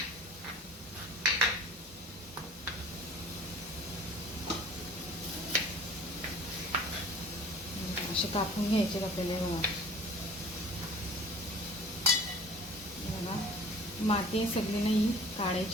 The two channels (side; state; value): both; normal; correlation 0.46